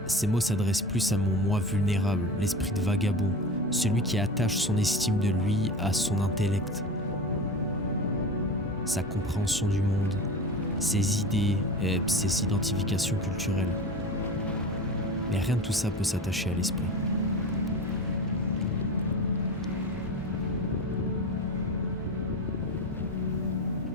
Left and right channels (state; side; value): normal; both; correlation 0.29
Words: ces mots s'adressent plus à mon moi vulnérable, l'esprit de vagabond, celui qui attache son estime de lui à son intellect, sa compréhension du monde, ses idées et ses identifications culturelles. Mais rien de tout ça peut s'attacher à l'esprit.